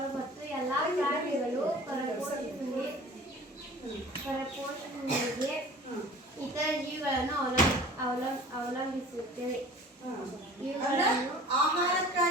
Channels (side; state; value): both; normal; correlation 0.45